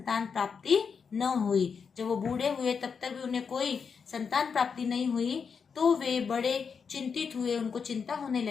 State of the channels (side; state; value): right; quieter; 6.0 dB